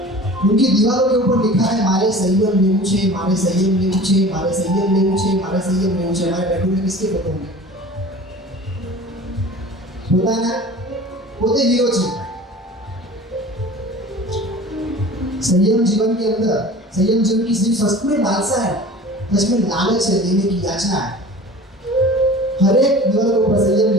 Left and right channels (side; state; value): both; normal; correlation 0.41